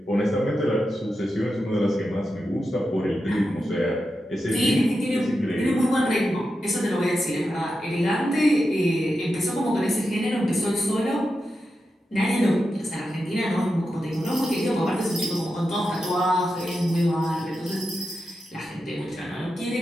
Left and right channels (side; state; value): both; normal; correlation 0.89